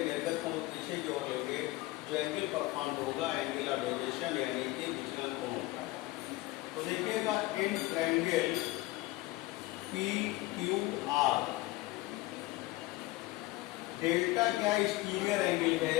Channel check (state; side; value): quieter; right; 19.1 dB